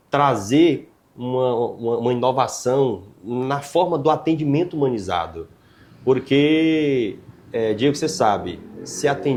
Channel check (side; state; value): both; identical; correlation 1.00